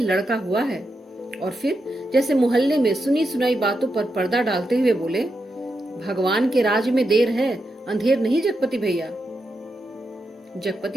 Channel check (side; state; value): both; normal; correlation 0.86